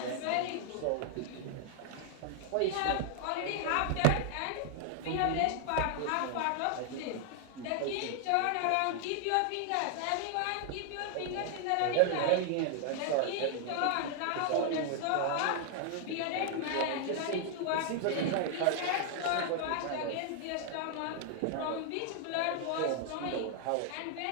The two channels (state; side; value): different; both; correlation 0.00